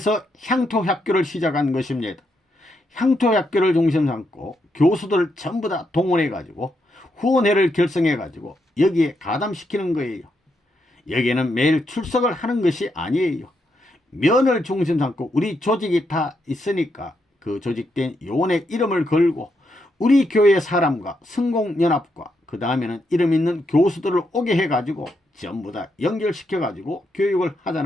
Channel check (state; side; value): normal; both; correlation 0.80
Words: 향토학교를 시작한 것입니다. 향토학교를 중심 삼고 교수들을 전부 다 동원해 가지고 후원회를 결성해 가지고 여기에 가담시키는 거예요. 여기에는 매일 출석을 하는 것이 아니에요. 면을 중심 삼고 우리 조직이 다 있으니까 그 조직된 요원의 이름을 걸고 우리 교회 사람과 성공연합과 그 다음에는 이름 있는 교수들을 오게 해가지고 전부 다 연결시켜가지고 교육을